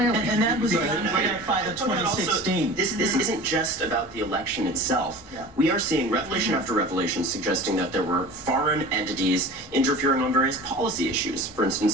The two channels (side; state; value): both; normal; correlation 0.38